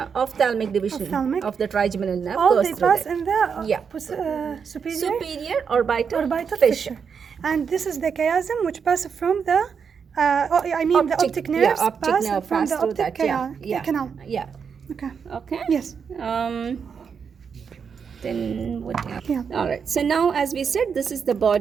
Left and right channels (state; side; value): quieter; left; 6.4 dB